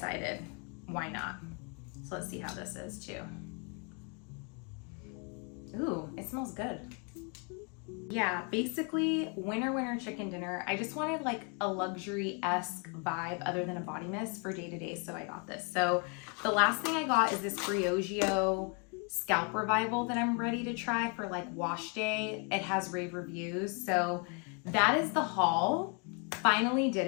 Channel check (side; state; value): right; quieter; 35.9 dB